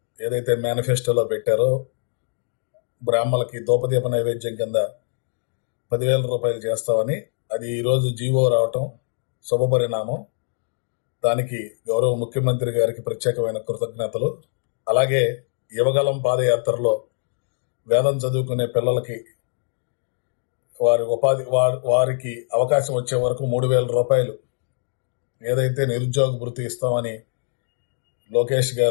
ఏదైతే మేనిఫెస్టోలో పెట్టారో బ్రాహ్మణులకి దూపదీప నైవేద్యం కింద 10,000 రూపాయలు చేస్తామని, అది ఈరోజు జీవో రావటం శుభపరిణామం. దానికి గౌరవ ముఖ్యమంత్రి గారికి ప్రత్యేకమైన కృతజ్ఞతలు. అలాగే యువగలం పాదయాత్రలో వేదం చదువుకునే పిల్లలకి వారికి అవకాశం వచ్చే వరకు 3,000 రూపాయలు ఏదైతే నిరుద్యోగ భృతి ఇస్తామని లోకేష్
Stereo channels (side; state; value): right; silent; 61 dB below the other